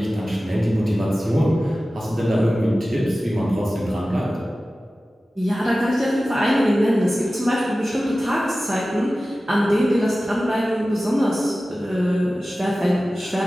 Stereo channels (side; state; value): both; normal; correlation 0.96